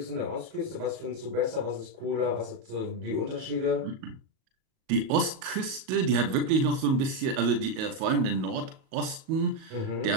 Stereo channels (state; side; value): late; left; 37 ms